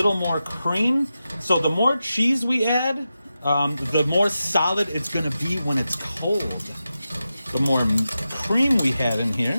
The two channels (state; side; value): inverted; both; correlation -0.91